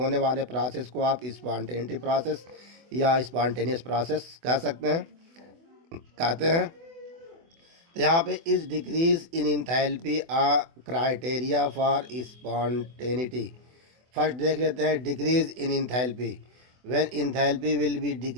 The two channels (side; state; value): left; late; 24 ms